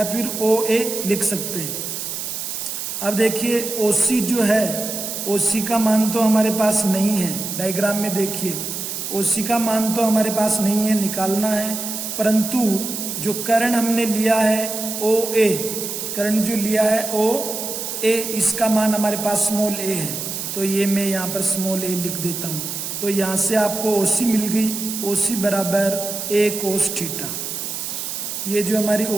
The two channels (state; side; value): noise; right; hiss, 5 dB below the sound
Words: फिर ओ ए लिख सकते हैं। अब देखिए ओ सी जो है, ओ सी का मान तो हमारे पास नहीं है। डायग्राम में देखिए ओ सी का मान तो हमारे पास नहीं है, निकालना है। परंतु जो कर्ण हमने लिया है ओ ए, कर्ण जो लिया है ओ ए, इसका मान हमारे पास स्मॉल ए है। तो ये मैं यहाँ पर स्मॉल ए लिख देता हूँ। तो यहाँ से आपको ओ सी मिल गई। ओ सी बराबर ए कोस थीटा। ये जो हमारी